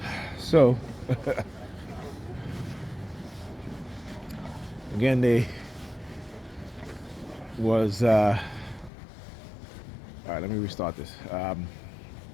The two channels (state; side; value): drops out; right; at 8.9 s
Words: So, again, they was, alright, let me restart this. Let's